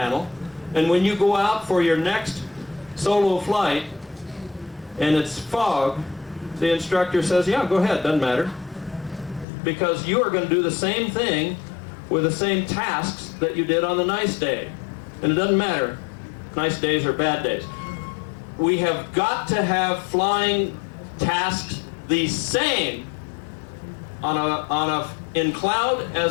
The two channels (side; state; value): right; drops out; at 9.5 s